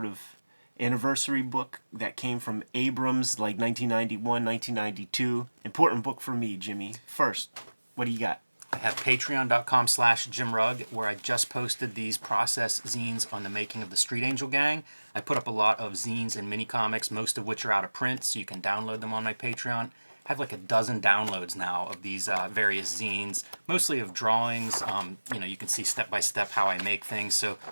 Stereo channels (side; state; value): both; inverted; correlation -1.00